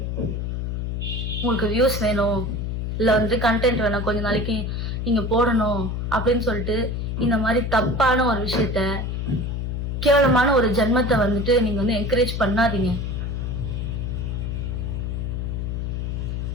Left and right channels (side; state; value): left; noise; hum, 2 dB below the sound